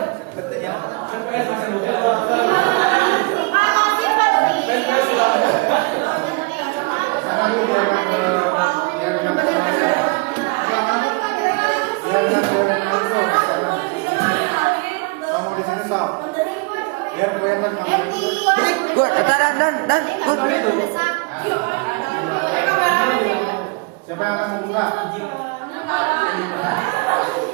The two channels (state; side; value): quieter; left; 29.4 dB